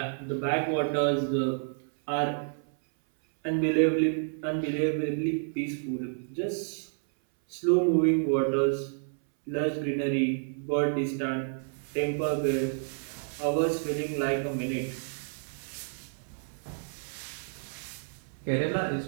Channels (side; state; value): left; silent; 58 dB below the other